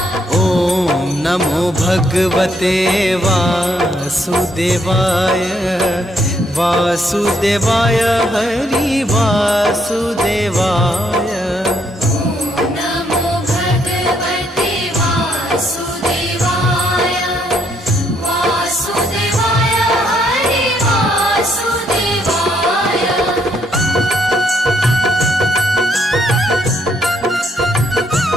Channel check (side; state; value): both; normal; correlation 0.72